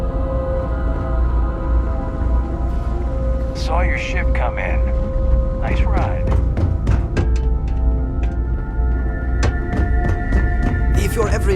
Saw your ship come in. Nice ride. If you're ever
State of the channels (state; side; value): identical; both; correlation 1.00